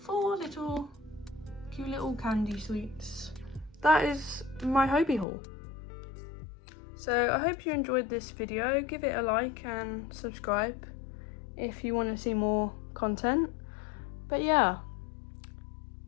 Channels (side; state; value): right; drops out; at 5.2 s